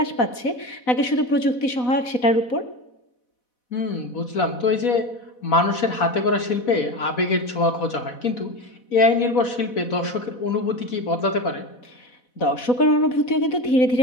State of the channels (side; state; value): right; late; 4.1 ms